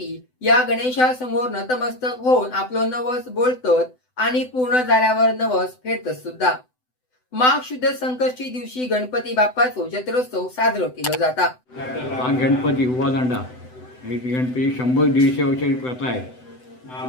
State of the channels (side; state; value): right; late; 7.9 ms